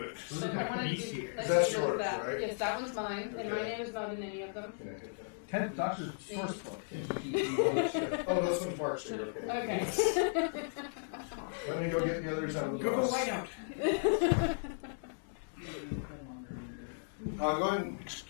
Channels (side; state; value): right; silent; digital silence